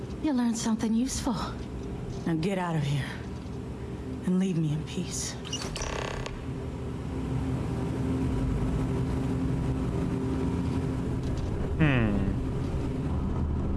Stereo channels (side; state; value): both; identical; correlation 1.00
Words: you'll learn something useful. Now get out of here and leave me in peace.